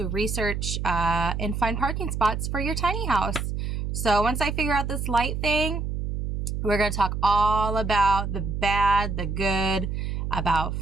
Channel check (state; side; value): noise; right; hum, 3 dB below the sound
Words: research and find parking spots for your tiny house. So once I figure out this light thing, we're going to talk all about the bad, the good, about